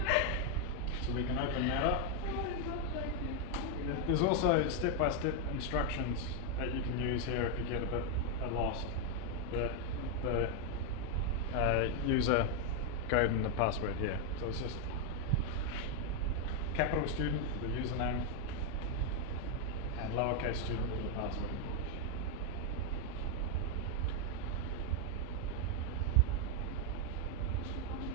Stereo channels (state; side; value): normal; both; correlation 0.01